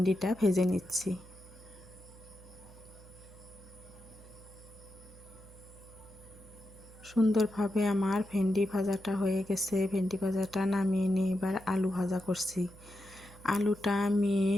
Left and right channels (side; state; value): right; noise; hum, 20 dB below the sound